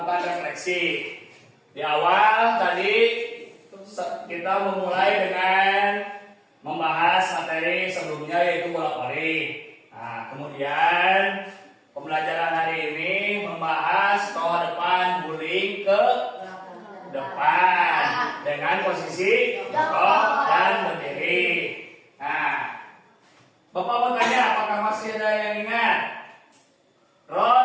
refleksi. Di awal tadi kita memulai dengan membahas materi sebelumnya yaitu bola voli. Nah, kemudian pembelajaran hari ini membahas toa depan guling ke depan dengan posisi jongkok dan berdiri. Nah, Bapak mau tanya apakah masih ada yang ingat?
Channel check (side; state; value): both; identical; correlation 1.00